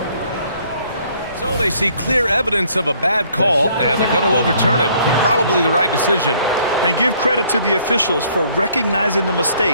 So they see clear evidence of a bad call, and they're going to overturn it. Probably the right decision. And give credit to the officials for recognizing the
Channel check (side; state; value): both; inverted; correlation -0.62